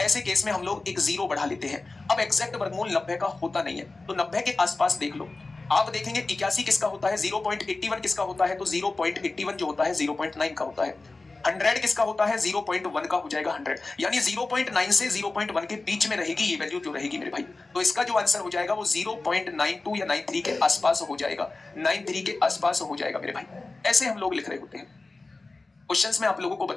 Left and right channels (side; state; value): right; quieter; 3.4 dB